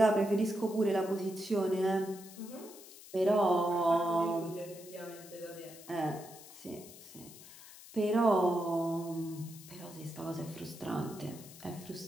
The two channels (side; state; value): left; noise; hiss, 18 dB below the sound